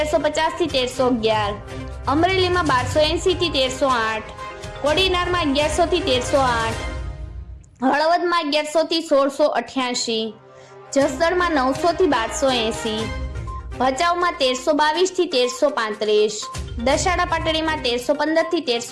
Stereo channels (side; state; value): both; identical; correlation 1.00